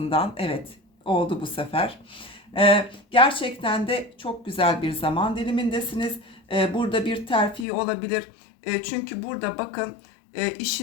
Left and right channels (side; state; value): right; drops out; at 7.7 s